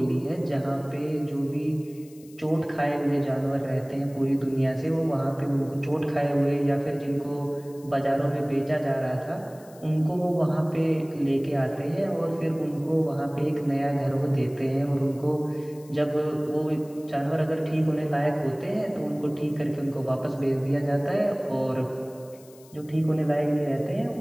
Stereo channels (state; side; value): noise; left; hiss, 25 dB below the sound